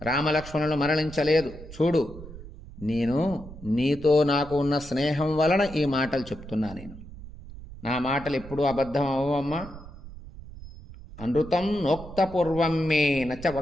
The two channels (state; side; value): noise; right; rumble, 15 dB below the sound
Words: రామలక్ష్మణులు మరణించలేదు. చూడు, నేను నీతో నాకు ఉన్న స్నేహం వలన ఈ మాటలు చెప్తున్నా. నా మాటలు ఎప్పుడూ అబద్ధం అవ్వమ్మా. అనృతం నోక్తపూర్వం మే నచ